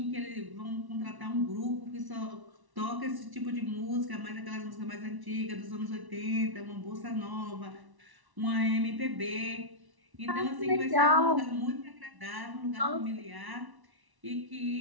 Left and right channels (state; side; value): late; left; 1.1 ms